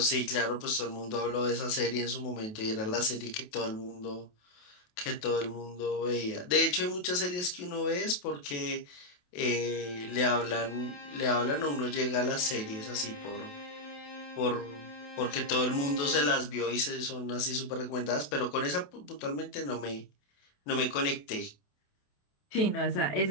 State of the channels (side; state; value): right; late; 28 ms